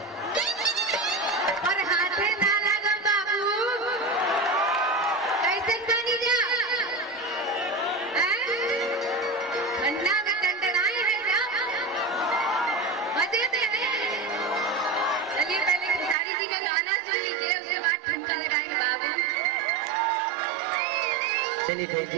और हाथे ना लगम बाबू, कैसे तानी जा ठंडा में टंडनाए है जा मजे में है। चलिए पहले खेसारी जी का गाना सुन लीजिए, उसके बाद ठुमका लगाएंगे बाबू। चलिए थैंक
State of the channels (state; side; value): drops out; left; at 16.2 s